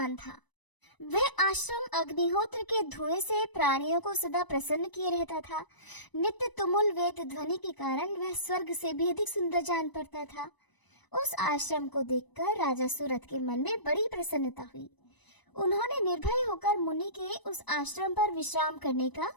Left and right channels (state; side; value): late; right; 1.0 ms